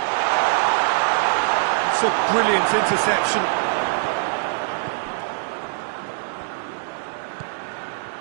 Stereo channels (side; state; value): left; silent; 64 dB below the other